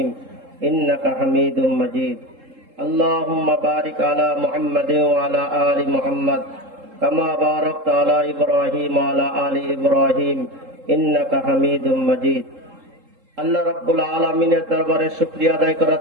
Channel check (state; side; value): late; left; 3.7 ms